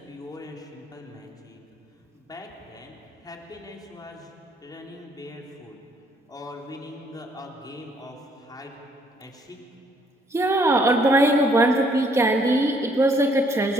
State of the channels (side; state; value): both; normal; correlation 0.66